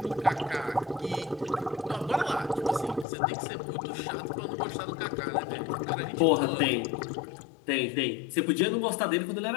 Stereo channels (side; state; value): right; drops out; at 3.1 s